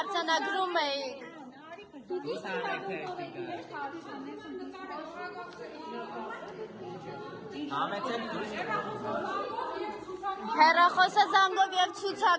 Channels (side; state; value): both; identical; correlation 1.00